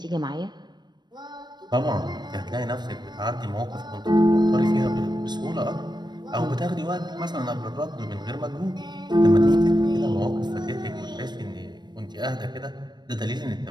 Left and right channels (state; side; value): late; left; 0.21 ms